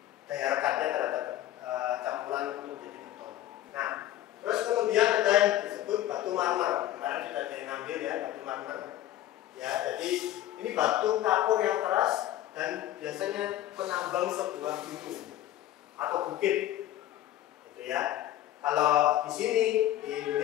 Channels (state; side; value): quieter; right; 13.3 dB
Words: daya rekatnya terhadap campuran untuk menjadi beton. Nah, terus kemudian ada yang disebut batu marmer. Kemarin sudah ada yang ngambil ya batu marmer. Ya, jadi ini batu kapur yang keras dan biasanya penambang sebuah gunung atau bukit, gitu ya. Kalau di sini di